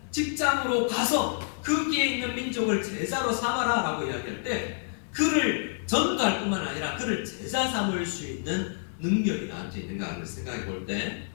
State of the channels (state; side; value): silent; right; digital silence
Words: 직장으로 가서 거기에 있는 민족을 제자로 삼아라 라고 이야기할 때 그를 전도할 뿐만 아니라 그를 제자 삼을 수 있는 능력이 나한테 있는가 하는 생각해 볼 때